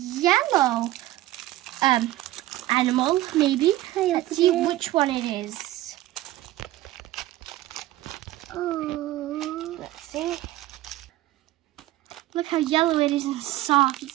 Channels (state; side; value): quieter; left; 15.9 dB